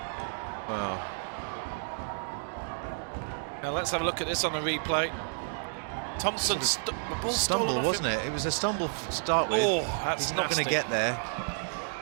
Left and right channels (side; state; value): left; silent; digital silence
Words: Wow. Now let's have a look at this on the replay. Thompson, the ball stumble, wasn't it? It was a stumble to start with. Oh, that's He's not going to get there.